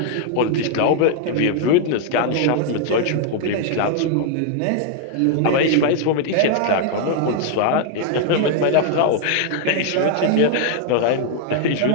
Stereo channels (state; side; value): different; both; correlation 0.00